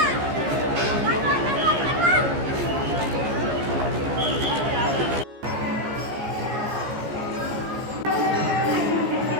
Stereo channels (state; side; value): late; left; 14 ms